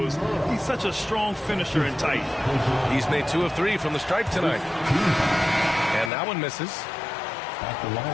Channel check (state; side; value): drops out; right; at 6.1 s